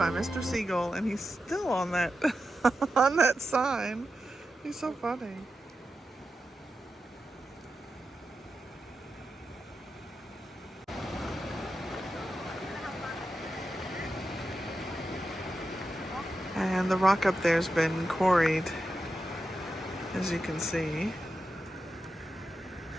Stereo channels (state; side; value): normal; both; correlation 0.90